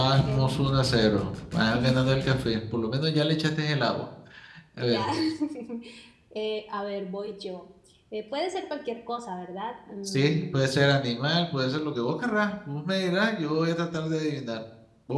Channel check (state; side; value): identical; both; correlation 1.00